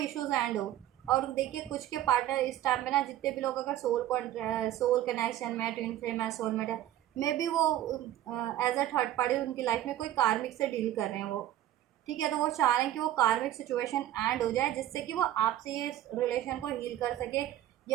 एंड हो। और देखिए कुछ के पार्टनर इस टाइम पे ना, जितने भी लोग अगर सोल कनेक्शन में, ट्विन फ्लेम है, सोलमेट है, मे बी वो एज अ थर्ड पार्टी उनकी लाइफ में कोई कार्मिक से डील कर रहे हैं वो, ठीक है। तो वो चाह रहे हैं कि वो कार्मिक सिचुएशन एंड हो जाए, जिससे कि वो आपसे ये रिलेशन को हील कर सके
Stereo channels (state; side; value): quieter; left; 12.9 dB